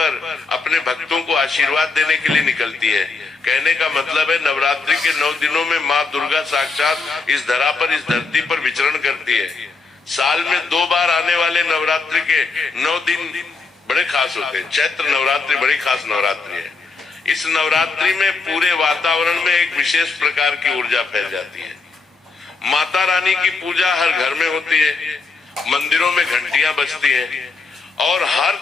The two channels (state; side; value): quieter; right; 4.3 dB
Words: अपने भक्तों को आशीर्वाद देने के लिए निकलती है। कहने का मतलब है नवरात्रि के 9 दिनों में माँ दुर्गा साक्षात इस धरा पर, इस धरती पर विचरण करती है। साल में 2 बार आने वाले नवरात्रि के 9 दिन बड़े खास होते हैं। चैत्र नवरात्रि बड़ी खास नवरात्रि है। इस नवरात्रि में पूरे वातावरण में एक विशेष प्रकार की ऊर्जा फैल जाती है। माता रानी की पूजा हर घर में होती है, मंदिरों में घंटियां बजती हैं और हर